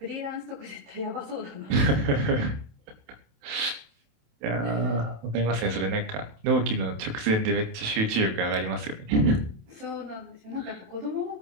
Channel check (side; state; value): left; late; 28 ms